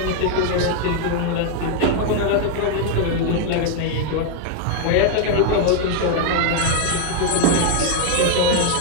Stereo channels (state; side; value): different; both; correlation 0.00